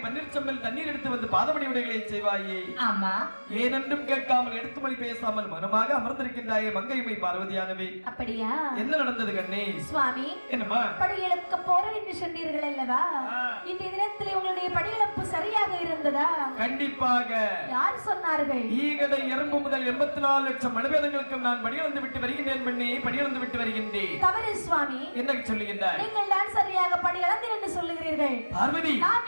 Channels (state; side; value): inverted; both; correlation -1.00